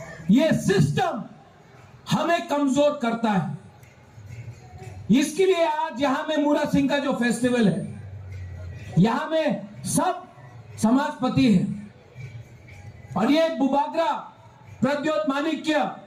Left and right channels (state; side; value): identical; both; correlation 1.00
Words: ये सिस्टम हमें कमजोर करता है। इसके लिए आज यहां में मूरा सिंह का जो फेस्टिवल है, यहां में सब समाजपति है और ये बुबागरा प्रद्योत माणिक्य,